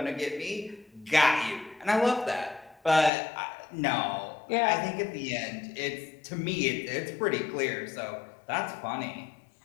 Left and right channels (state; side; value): drops out; right; at 3.1 s